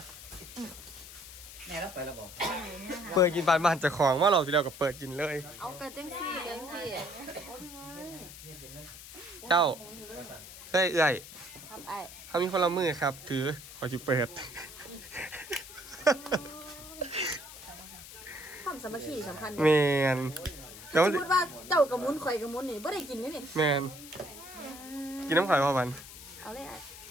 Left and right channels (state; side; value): noise; left; hiss, 15 dB below the sound